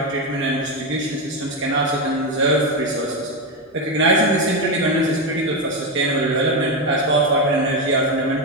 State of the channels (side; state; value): both; normal; correlation 0.10